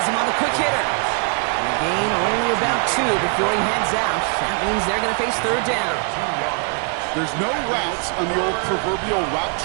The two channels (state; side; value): quieter; left; 38.7 dB